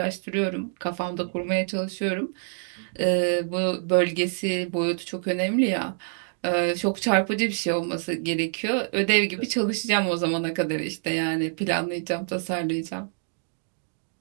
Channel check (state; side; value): silent; left; digital silence